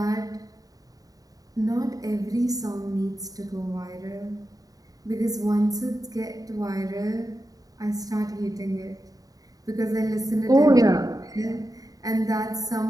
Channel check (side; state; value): left; late; 0.18 ms